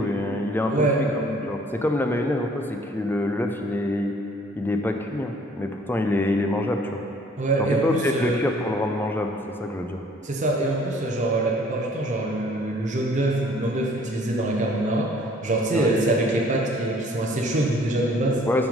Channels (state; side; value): normal; both; correlation 0.57